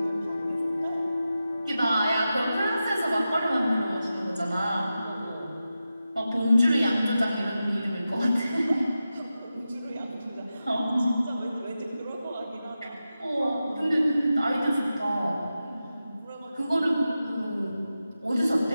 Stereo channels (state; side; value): inverted; both; correlation -0.92